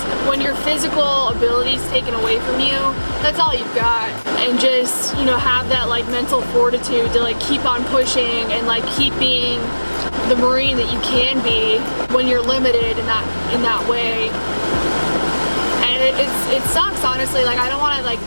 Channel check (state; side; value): inverted; both; correlation -1.00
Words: when your physical ability is taken away from you, that's all you've got. And just, you know, have that like mental fortitude to like keep on pushing and like keep being the Marine that you can be when you're limited in that way. And it sucks, honestly. Like, I don't want to like